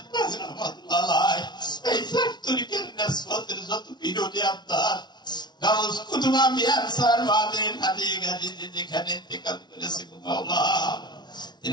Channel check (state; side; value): late; right; 0.20 ms